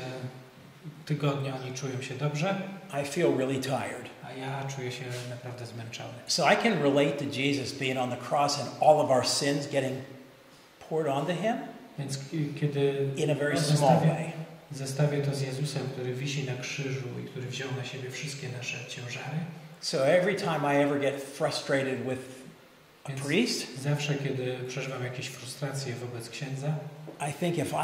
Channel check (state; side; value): identical; both; correlation 1.00